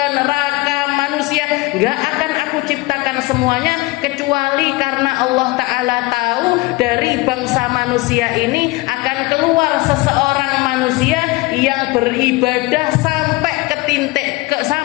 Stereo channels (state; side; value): quieter; right; 22.6 dB